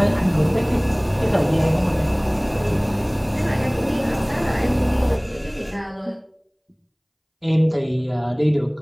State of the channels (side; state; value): both; identical; correlation 1.00